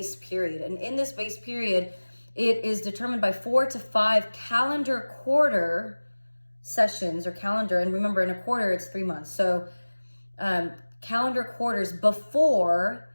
period. And in this base period, it is determined by 4 to 5 calendar quarter sessions or calendar. And remember, in a quarter, it's 3 months. So calendar quarters before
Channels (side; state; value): both; inverted; correlation -1.00